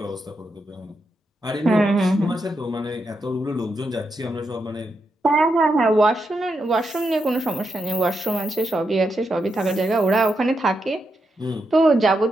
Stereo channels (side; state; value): both; normal; correlation 0.84